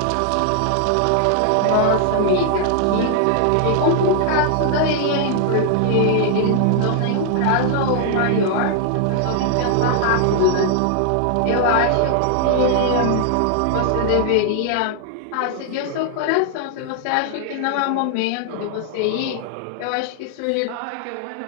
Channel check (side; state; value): both; different; correlation 0.00